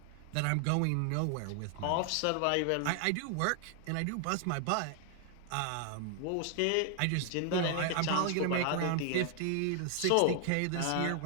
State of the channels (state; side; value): different; both; correlation 0.00